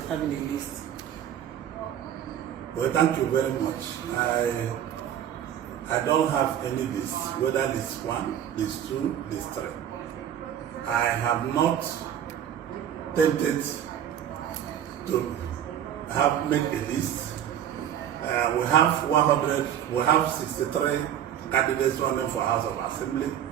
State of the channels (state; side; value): quieter; left; 10.1 dB